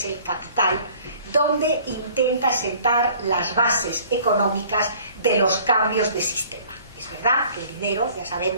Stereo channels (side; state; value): both; inverted; correlation -0.52